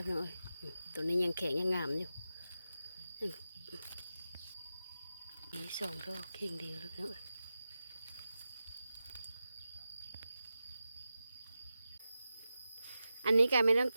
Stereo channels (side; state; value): both; inverted; correlation -0.92